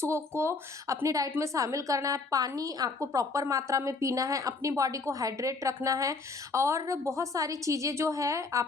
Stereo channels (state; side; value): quieter; right; 4.0 dB